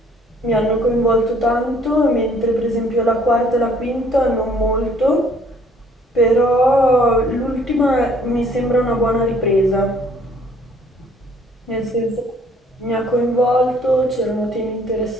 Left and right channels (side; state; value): both; normal; correlation 0.60